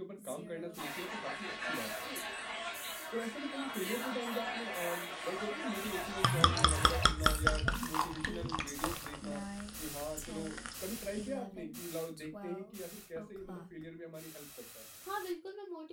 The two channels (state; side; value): identical; both; correlation 1.00